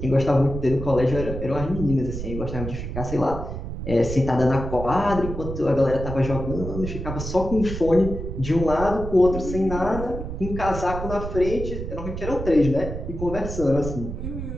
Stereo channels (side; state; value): right; noise; rumble, 6 dB below the sound